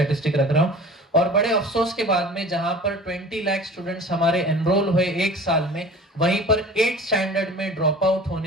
रख रहा हूँ। और बड़े अफसोस के बाद में जहां पर 20 लाख स्टूडेंट्स हमारे एनरोल हुए एक साल में, वहीं पर 8th स्टैंडर्ड में ड्रॉप आउट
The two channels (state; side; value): normal; both; correlation 0.41